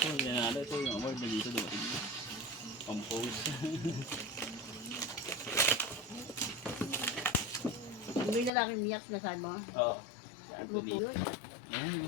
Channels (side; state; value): right; drops out; at 8.5 s